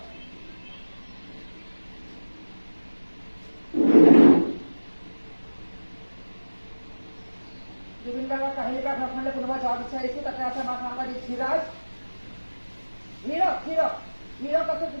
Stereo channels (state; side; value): inverted; both; correlation -1.00